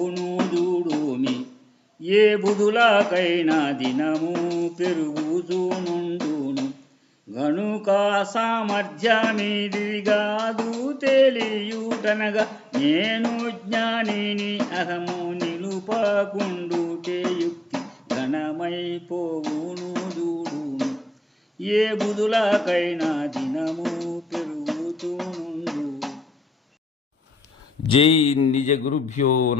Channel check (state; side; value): normal; both; correlation 0.88